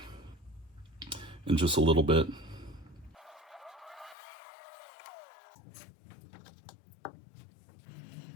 in just a little bit.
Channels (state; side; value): drops out; right; at 4.2 s